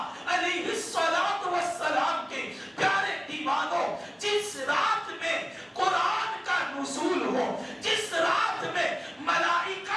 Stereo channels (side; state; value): both; identical; correlation 1.00